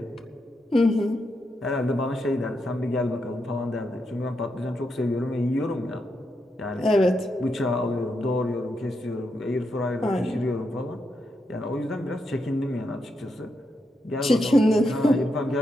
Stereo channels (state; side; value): normal; both; correlation 0.83